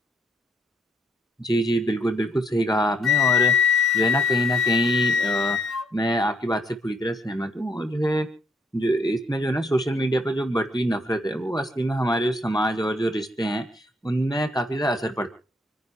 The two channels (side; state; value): both; normal; correlation 0.69